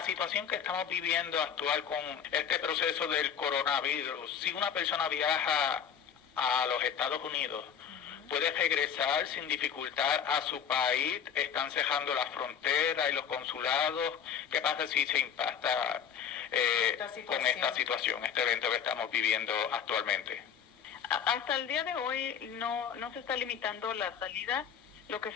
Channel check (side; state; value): right; quieter; 8.1 dB